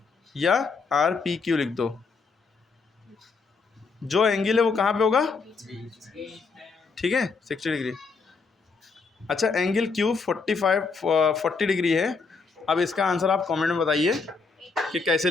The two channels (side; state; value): right; quieter; 4.6 dB